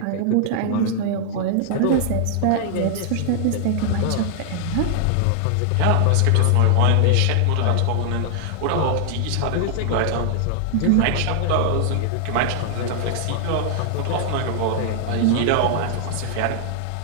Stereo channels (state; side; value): different; both; correlation -0.01